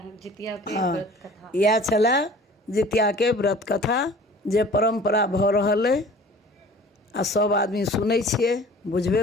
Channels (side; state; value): both; normal; correlation 0.46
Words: जितिया के हाँ, व्रत कथा। इएह छलै जितिया के व्रत कथा जे परम्परा भऽ रहल अइ आ सब आदमी सुनै छियै,